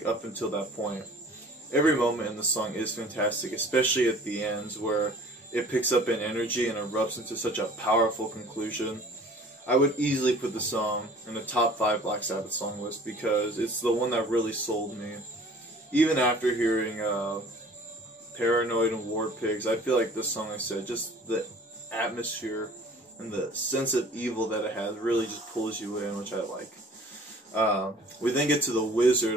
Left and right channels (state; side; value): normal; both; correlation 0.48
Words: up until that point. Every moment in the song is fantastic, especially at the ends where it picks up in energy and erupts into such a powerful conclusion. I would easily put the song in the top 5 Black Sabbath song list, because it's the one that really sold me. Even after hearing Paranoid and War Pigs, I feel like this song, like I said, just the atmosphere and the sense of evil that it has really just pulls you in, which I like. We then get to The